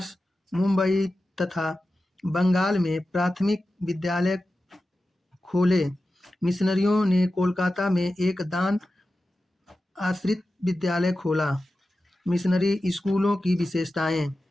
मुंबई तथा बंगाल में प्राथमिक विद्यालय खोले। मिशनरियों ने कोलकाता में एक दान आश्रित विद्यालय खोला। मिशनरी स्कूलों की विशेषताएं।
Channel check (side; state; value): both; normal; correlation 0.93